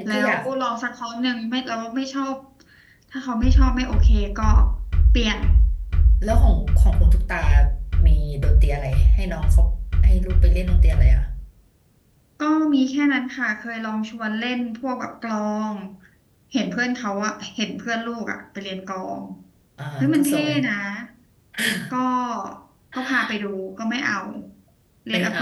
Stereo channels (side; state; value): both; identical; correlation 1.00